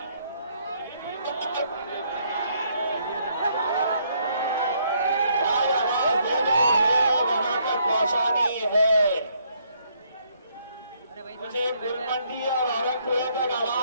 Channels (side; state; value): both; inverted; correlation -0.70